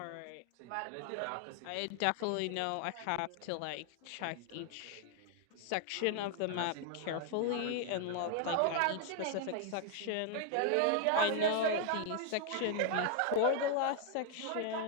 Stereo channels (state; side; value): different; both; correlation 0.00